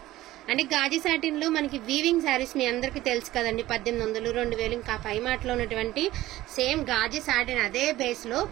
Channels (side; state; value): left; quieter; 16.0 dB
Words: అంటే గాజీ సాటిన్ లో మనకి వీవింగ్ శారీస్ మీ అందరికి తెలుసు కదండి. 1800, 2000 ఇంకా పై మాటలో ఉన్నటువంటి సేమ్ గాజీ సాటిన్ అదే బేస్ లో